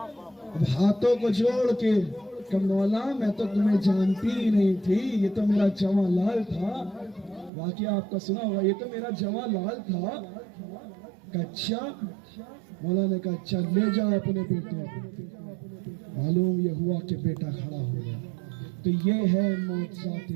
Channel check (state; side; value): drops out; left; at 7.5 s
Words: اب ہاتھوں کو جوڑ کے کہ مولا میں تو تمہیں جانتی ہی نہیں تھی, یہ تو میرا جواں لال تھا. واقعہ آپ کا سنا ہوا, یہ تو میرا جواں لال تھا. اچھا, مولا نے کہا اچھا لے جاؤ اپنے بیٹے کو. معلوم یہ ہوا کہ بیٹا کھڑا ہو گیا. تو یہ ہے معجزات